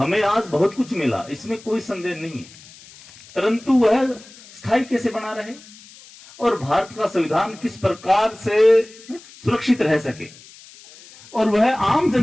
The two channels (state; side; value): noise; left; hiss, 22 dB below the sound